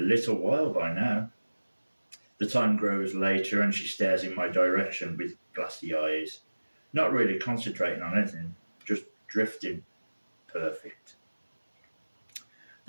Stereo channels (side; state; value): both; inverted; correlation -1.00